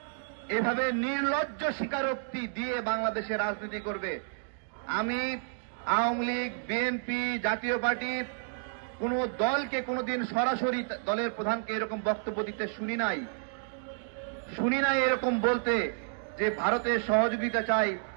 এভাবে নির্লজ্জ স্বীকারোক্তি দিয়ে বাংলাদেশে রাজনীতি করবে। আমি আওয়ামী লীগ, বিএনপি, জাতীয় পার্টি কোন দলকে কোনদিন সরাসরি দলের প্রধানকে এরকম বক্তব্য দিতে শুনি নাই এরকম বলতে যে ভারতের সহযোগিতা চাই,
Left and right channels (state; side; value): silent; left; digital silence